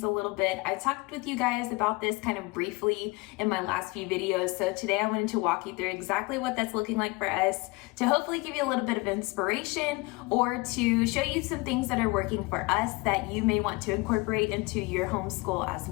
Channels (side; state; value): right; quieter; 25.3 dB